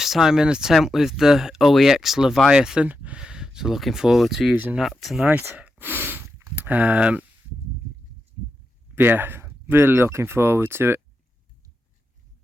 time in a tent with the OEX Leviathan, so looking forward to using that tonight. Yeah, really looking forward to it.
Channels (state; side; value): normal; both; correlation 0.87